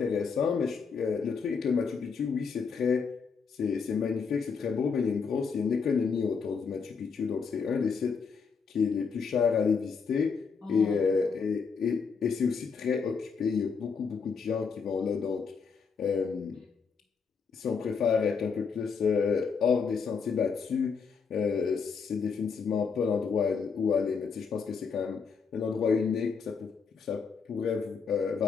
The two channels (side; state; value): right; quieter; 5.6 dB